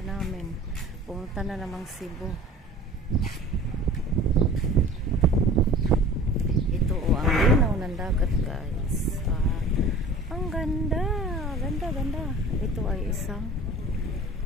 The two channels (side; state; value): both; normal; correlation 0.43